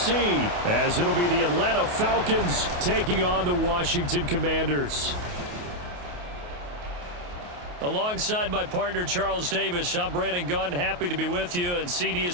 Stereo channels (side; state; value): left; late; 28 ms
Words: as it'll be the Atlanta Falcons taking on the Washington Commanders. Alongside my partner, Charles Davis, I'm Brandon Gunn, happy to be with you. And CD,